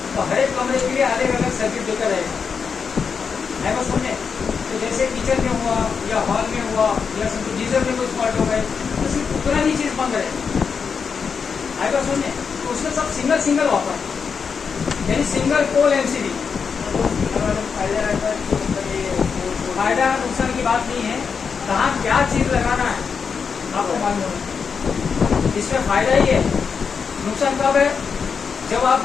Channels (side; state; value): right; quieter; 5.9 dB